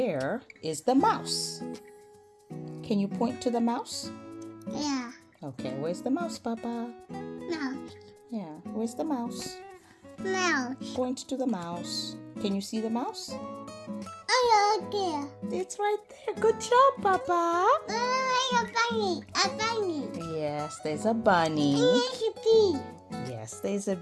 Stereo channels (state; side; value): identical; both; correlation 1.00